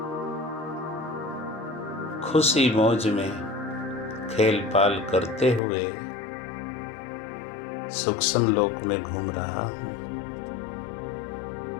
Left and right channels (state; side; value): drops out; right; at 5.6 s